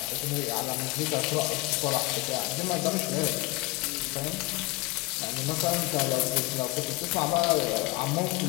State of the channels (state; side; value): quieter; right; 23.7 dB